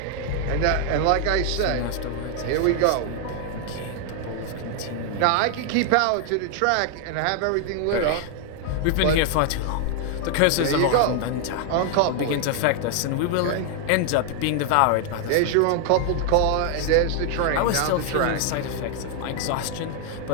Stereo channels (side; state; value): both; different; correlation 0.00